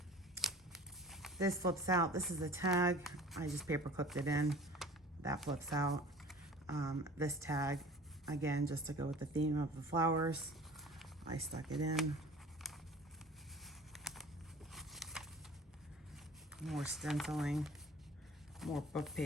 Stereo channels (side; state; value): both; normal; correlation 0.45